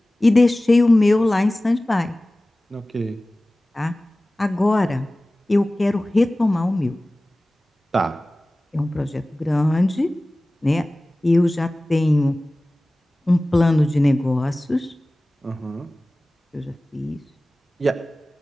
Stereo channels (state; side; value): normal; both; correlation 0.98